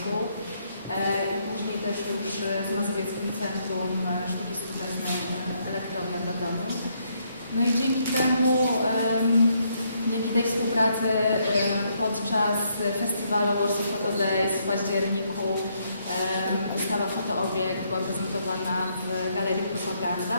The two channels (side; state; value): both; inverted; correlation -0.73